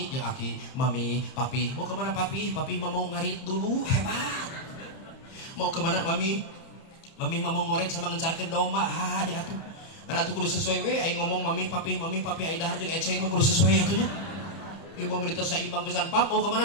jeung aki, mami, papi. Mau kemana papi? Papi mau ngarit dulu, hebat. Mau kemana mami? Mami mau ngoret sama ngencarkeun domba. Di atuh. Karena tuh kudu sesuai we, aing ngomong mami, papi, aing dahar jeung eceng mah kudu sesuai atunya. Ieu mau menit saimbang pisan, pap, mau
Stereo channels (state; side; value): late; right; 30 ms